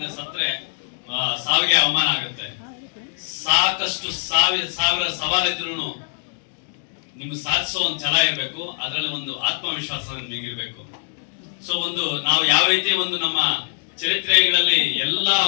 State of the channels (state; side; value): silent; right; digital silence